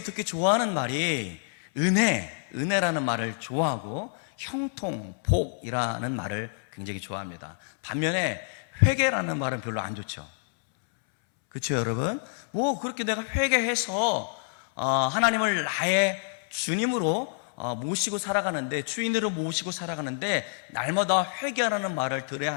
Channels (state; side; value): silent; right; 60 dB below the other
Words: 특히 좋아하는 말이 은혜라는 말을 좋아하고 형통, 복이라는 말을 굉장히 좋아합니다. 반면에 회개라는 말은 별로 안 좋죠. 그렇죠, 여러분? 그렇게 내가 회개해서 하나님을 나의 주님으로 모시고 살아가는데, 주인으로 모시고 살아가는데 날마다 회개하라는 말을 들어야